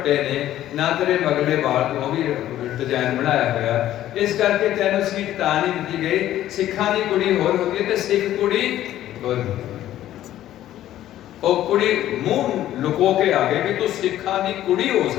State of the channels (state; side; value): quieter; right; 12.9 dB